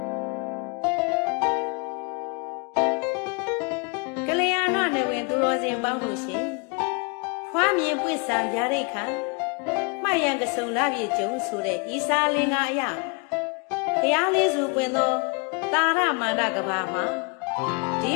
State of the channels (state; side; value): quieter; right; 33.9 dB